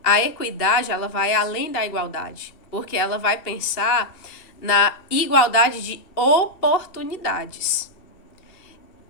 A equidade, ela vai além da igualdade, porque ela vai pensar na igualdade de oportunidades.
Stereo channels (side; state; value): right; late; 2.7 ms